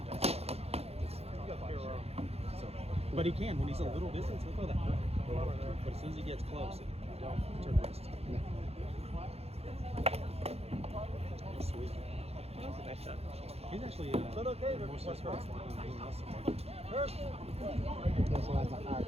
that. So, but he can, when he's a little distance, he'll throw that. But as soon as he gets close, don't turn the wrist. Sweet. That was a nice shot. He's actually more suspect than muscle. That's why it's a higher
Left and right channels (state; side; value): late; left; 0.29 ms